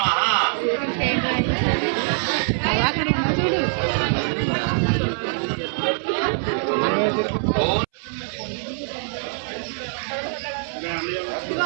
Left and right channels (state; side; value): silent; left; 63 dB below the other